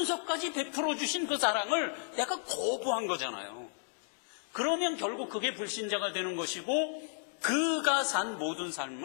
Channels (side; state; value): right; silent; 56 dB below the other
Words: 베풀어 주신 그 사랑을 내가 거부한 거잖아요. 그러면 결국 그게 불신자가 되는 것이고, 그가 산 모든